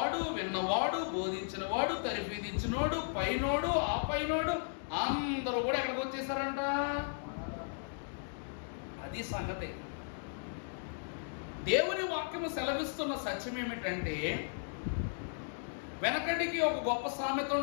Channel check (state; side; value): silent; right; digital silence